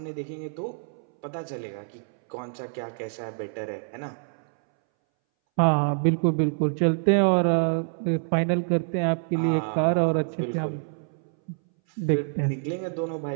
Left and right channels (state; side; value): silent; left; 61 dB below the other